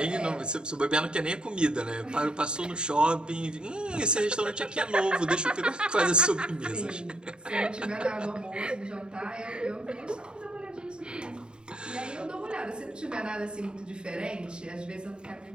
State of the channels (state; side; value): late; left; 0.050 ms